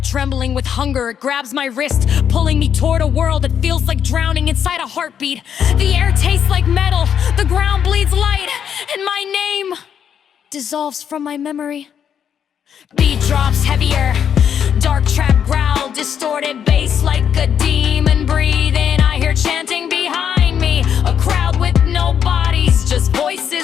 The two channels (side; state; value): right; quieter; 8.3 dB